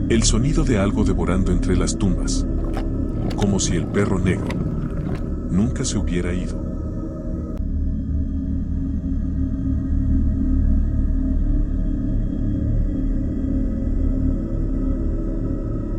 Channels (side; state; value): both; identical; correlation 1.00